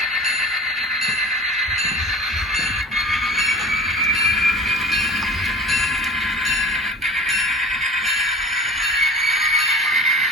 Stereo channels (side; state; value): both; normal; correlation 0.40